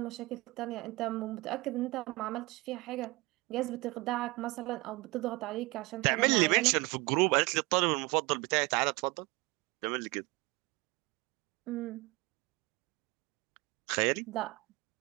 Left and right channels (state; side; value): quieter; left; 23.3 dB